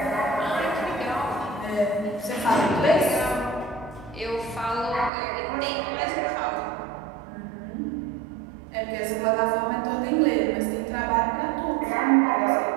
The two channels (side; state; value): left; drops out; at 5.1 s